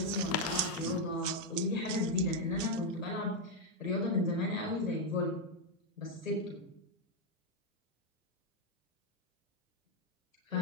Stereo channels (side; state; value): both; normal; correlation 0.02